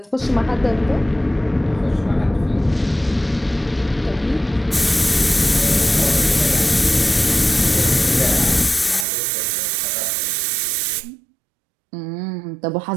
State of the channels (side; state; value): left; drops out; at 9.1 s